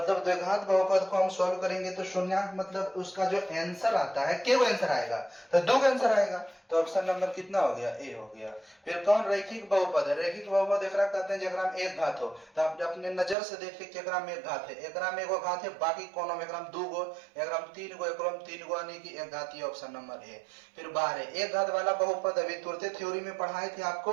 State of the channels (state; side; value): drops out; left; at 13.4 s